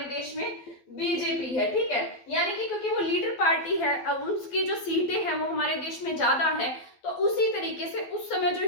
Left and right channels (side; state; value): right; late; 12 ms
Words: देश में बीजेपी है। ठीक है, यानी कि क्योंकि वो लीडर पार्टी है, अब उसकी जो सीटें हैं वो हमारे देश में ज्यादा है, तो उसी तरीके से उस समय जो